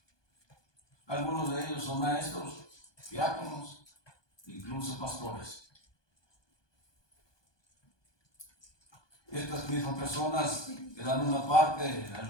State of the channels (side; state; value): right; late; 1.2 ms